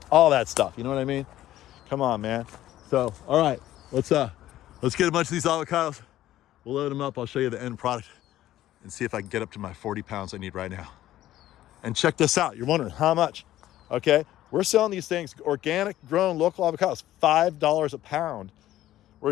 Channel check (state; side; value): quieter; right; 13.8 dB